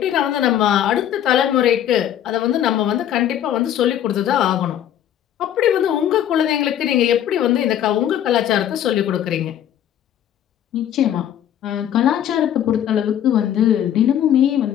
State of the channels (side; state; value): right; quieter; 10.7 dB